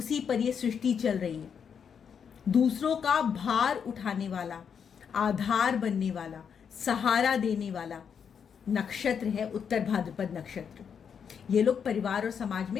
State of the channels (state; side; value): quieter; right; 7.1 dB